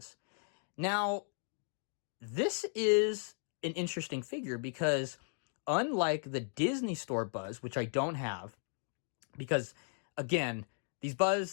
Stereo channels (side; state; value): right; silent; 54 dB below the other